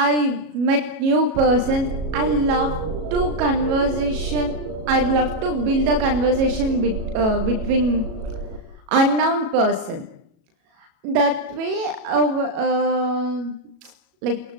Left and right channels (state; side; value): late; left; 37 ms